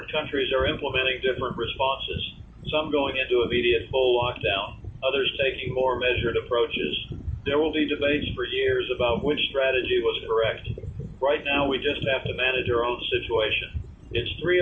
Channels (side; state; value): both; identical; correlation 1.00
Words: countries are implementing different responses, some going into immediate full lockdown, others taking more measured approaches. There will be debates for years about which strategy was correct. Right now, we just have to manage our own situation. It's